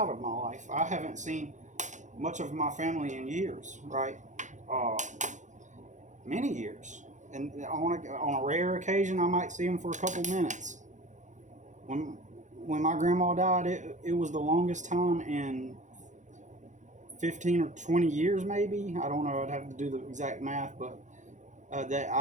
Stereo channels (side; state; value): left; late; 0.35 ms